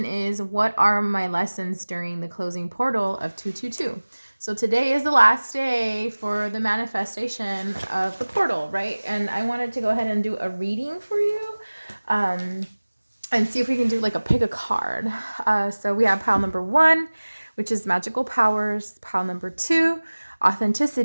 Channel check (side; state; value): both; inverted; correlation -1.00